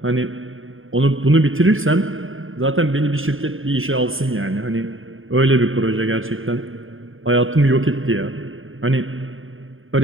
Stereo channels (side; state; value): left; late; 0.59 ms